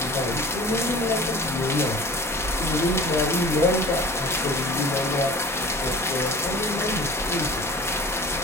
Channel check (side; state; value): both; normal; correlation 0.40